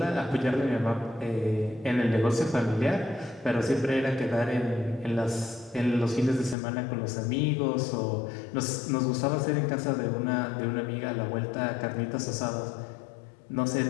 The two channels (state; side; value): drops out; right; at 6.6 s